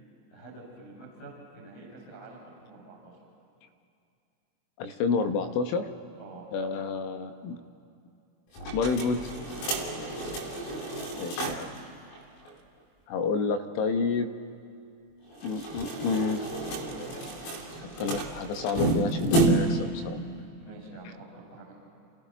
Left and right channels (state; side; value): late; right; 23 ms